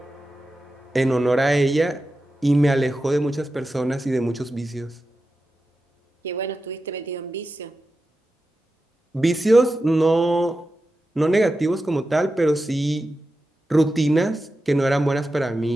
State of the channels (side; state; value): both; normal; correlation 0.91